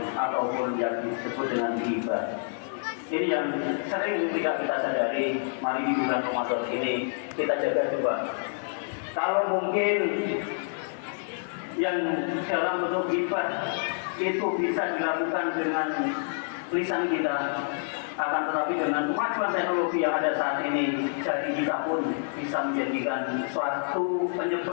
ataupun yang disebut dengan ghibah. Ini yang sering tidak kita sadari. Mari di bulan Ramadan ini kita jaga coba. Kalau mungkin yang dalam bentuk ghibah itu bisa dilakukan dengan lisan kita, akan tetapi dengan kemajuan teknologi yang ada saat ini, jadi kita pun bisa menjadikan suatu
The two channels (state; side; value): silent; right; digital silence